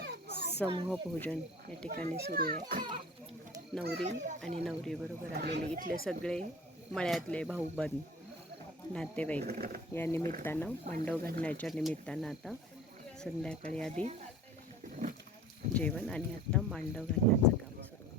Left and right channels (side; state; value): both; normal; correlation 0.42